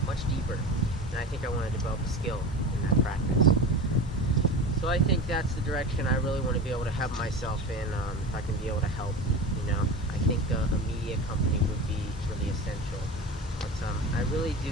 much deeper. And I think I want to develop a skill in that practice. So I think that's the direction I really want to be able to have myself in. If I can be able to help, I think a media company would be really essential. But I really do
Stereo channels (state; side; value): normal; both; correlation 0.30